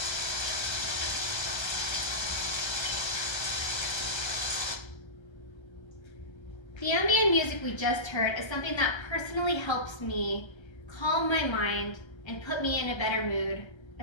The ambient music we just heard is something that personally helps me calm my mind and put me in a better mood,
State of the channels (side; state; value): right; late; 1.3 ms